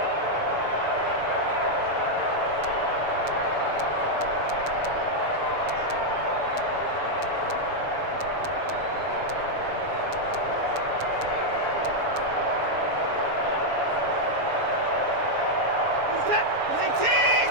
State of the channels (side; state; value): left; late; 7.0 ms